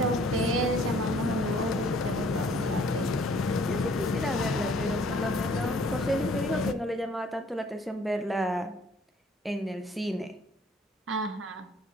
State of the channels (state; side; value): normal; both; correlation 0.58